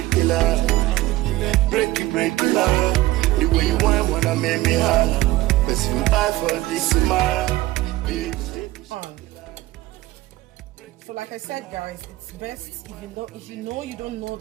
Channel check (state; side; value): quieter; left; 17.4 dB